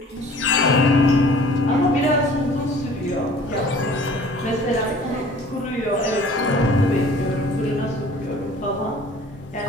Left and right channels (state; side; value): normal; both; correlation 0.49